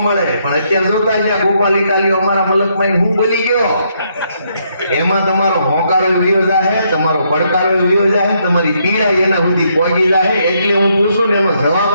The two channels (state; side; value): inverted; both; correlation -0.74